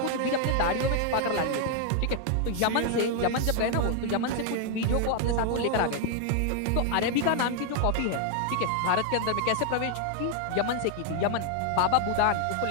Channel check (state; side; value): different; both; correlation 0.00